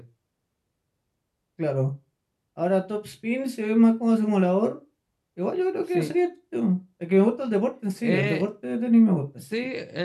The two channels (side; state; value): both; identical; correlation 1.00